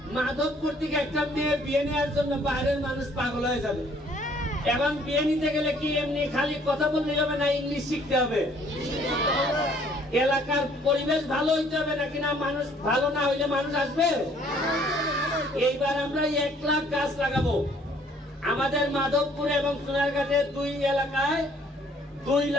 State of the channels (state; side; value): normal; both; correlation 0.60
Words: মাধবপুর থেকে একটা মেয়ে বিয়ে নেওয়ার জন্য বাইরের মানুষ পাগল হয়ে যাবে। এখন বিয়ে নিতে গেলে কি এমনি খালি কথা বললে হবে না, ইংলিশ শিখতে হবে। এলাকার পরিবেশ ভালো হইতে হবে, নাকি না মানুষ ভালো না হইলে মানুষ আসবে? এইবার আমরা 1 লাখ গাছ লাগাবো আমাদের মাধবপুর এবং সোনারঘাটে 2 এলাকায় 2